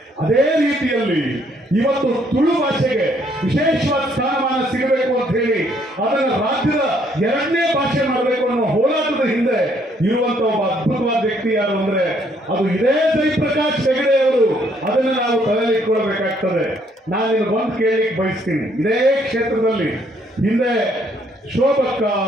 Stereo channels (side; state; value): both; normal; correlation 0.67